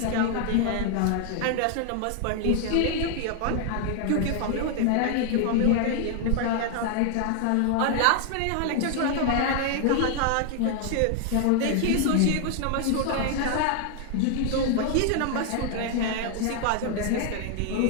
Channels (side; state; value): both; different; correlation 0.00